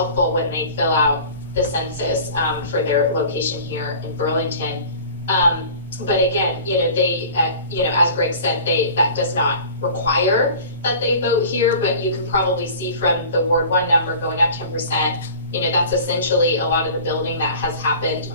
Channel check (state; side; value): inverted; both; correlation -0.42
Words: when they fill out the census for their location here in Burlington. But again, they, as Greg said, that does not require that they vote here, but you could probably see from the Ward 1 number going up 10%, that's essentially a lot of the building that has happened